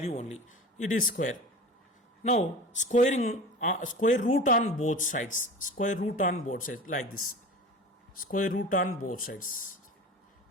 only. It is square. Now squaring square root on both sides. Square root on both sides like this. Square root on both sides.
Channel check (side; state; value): both; normal; correlation 0.34